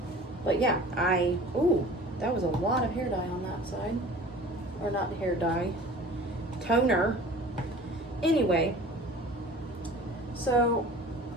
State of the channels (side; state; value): both; normal; correlation 0.43